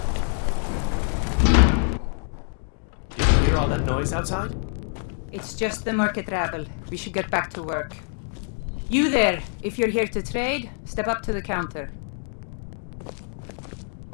Noise outside? It's just the market rabble. We should get back to work. You there, if you're here to trade, step up to the counter.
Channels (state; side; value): silent; right; 56 dB below the other